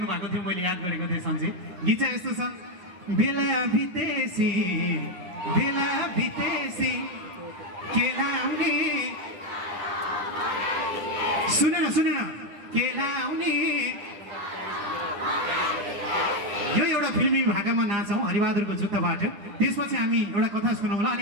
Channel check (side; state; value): left; late; 9.9 ms